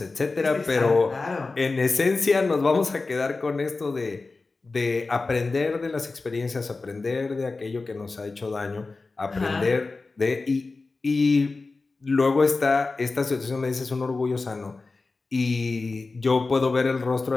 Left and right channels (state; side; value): quieter; right; 3.7 dB